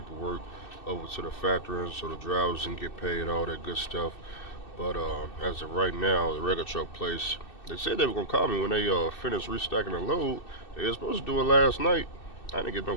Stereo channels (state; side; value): late; right; 2.6 ms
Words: over to the factory so the drivers can get paid, all that good stuff. But as of right now, the regular truck place, they said they were gonna call me when they finished restacking the load. They were supposed to do it last night. I didn't get no